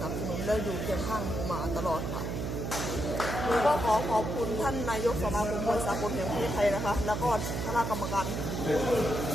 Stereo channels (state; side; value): noise; right; hum, 3 dB below the sound